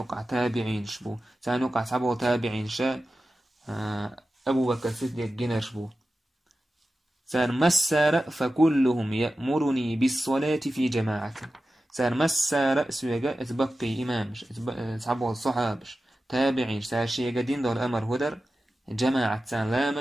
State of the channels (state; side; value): normal; both; correlation 0.93